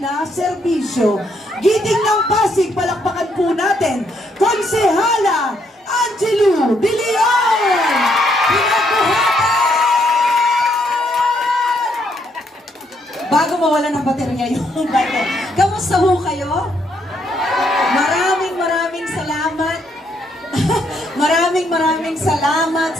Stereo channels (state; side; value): normal; both; correlation 0.73